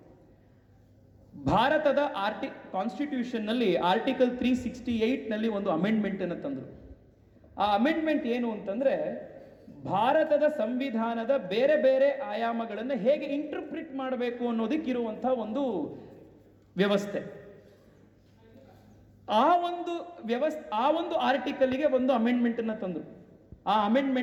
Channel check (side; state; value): both; identical; correlation 1.00